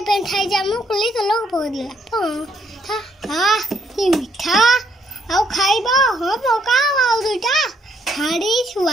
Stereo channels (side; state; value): both; normal; correlation 0.71